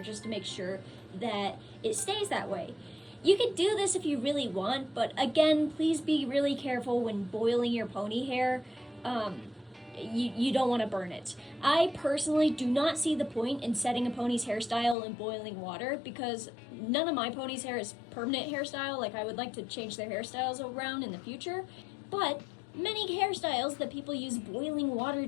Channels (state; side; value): drops out; right; at 15.0 s